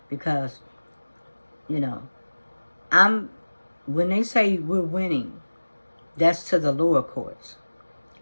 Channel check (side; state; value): both; inverted; correlation -1.00